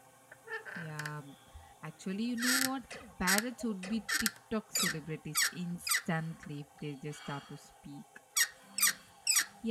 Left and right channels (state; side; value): identical; both; correlation 1.00